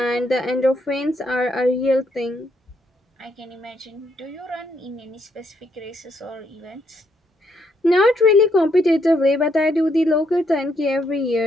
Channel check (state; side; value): normal; both; correlation 0.74